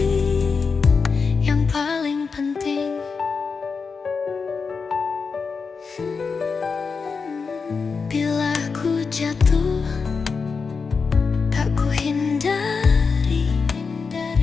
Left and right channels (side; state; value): right; quieter; 5.1 dB